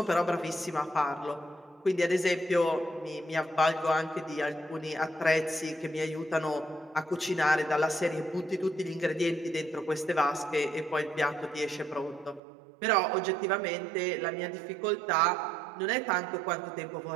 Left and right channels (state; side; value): drops out; left; at 12.4 s